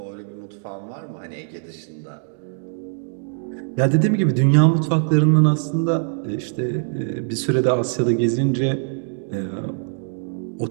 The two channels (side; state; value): left; silent; digital silence